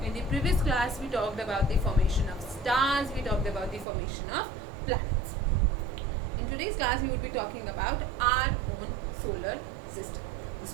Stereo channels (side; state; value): left; drops out; at 3.9 s